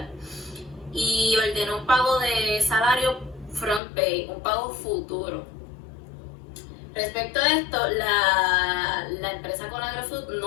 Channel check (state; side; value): drops out; right; at 3.8 s